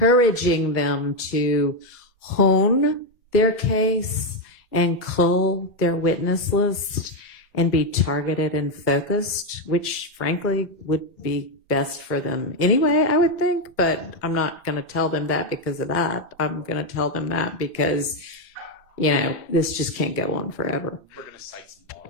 them to hone their case and cull their witness list and be targeted and focused, which frankly would be best for them anyway, I would think, but I'm not going to tell them that because of that. I'm going to tell them that because, this just can't go on forever. We're going to cite some law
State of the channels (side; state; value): both; normal; correlation 0.05